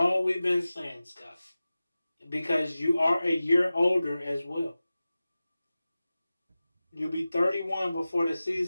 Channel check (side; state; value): both; inverted; correlation -0.96